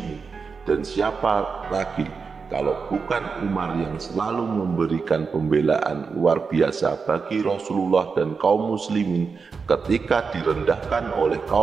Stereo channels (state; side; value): quieter; left; 5.2 dB